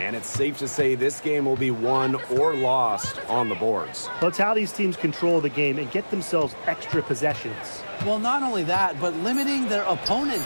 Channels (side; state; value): both; inverted; correlation -1.00